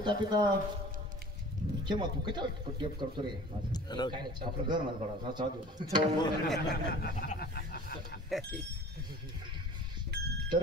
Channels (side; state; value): both; normal; correlation 0.44